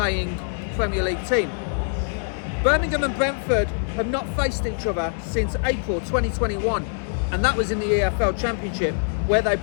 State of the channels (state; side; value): silent; right; digital silence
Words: Premier League team. Birmingham and Brentford have not faced each other since April 2021, and that was in the EFL Championship, where they